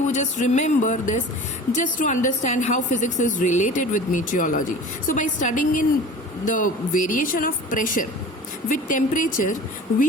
just remember this just to understand how physics is related with meteorology. So by studying in the variation of pressure with temperature,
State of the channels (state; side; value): normal; both; correlation 0.40